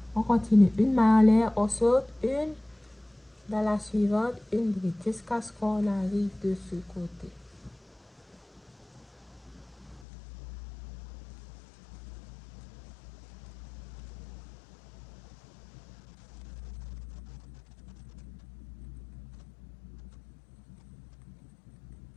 On continue. Une maille en l'air, on saute une. Dans la suivante, une bride jusqu'à ce qu'on arrive de ce côté.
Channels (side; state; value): right; drops out; at 10.1 s